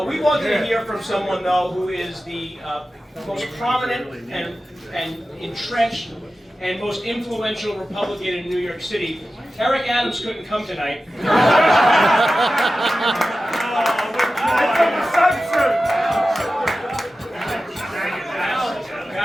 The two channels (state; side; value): normal; both; correlation 0.94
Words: We wanted to hear from someone, though, who is the most prominent and entrenched and most influential Republican in New York City. Eric Adams couldn't come tonight.